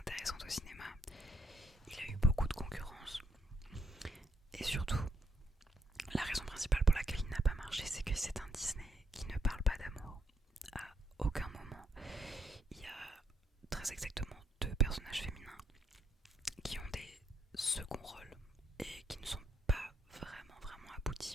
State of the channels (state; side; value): normal; both; correlation 0.74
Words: au cinéma. Il a eu beaucoup de concurrence. Et surtout, la raison principale pour laquelle il n'a pas marché, c'est que c'est un Disney qui ne parle pas d'amour. À aucun moment, il y a très exactement deux personnages féminins qui ont des seconds rôles et qui ne sont pas vraiment